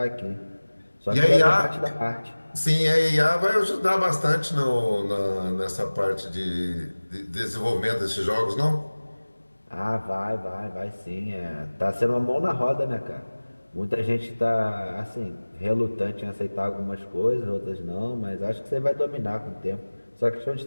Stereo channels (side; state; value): both; inverted; correlation -1.00